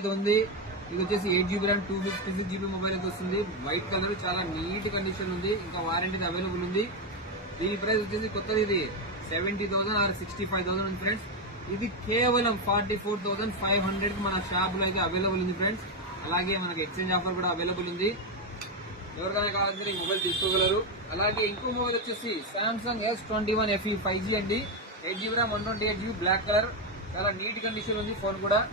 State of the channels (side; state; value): both; normal; correlation 0.07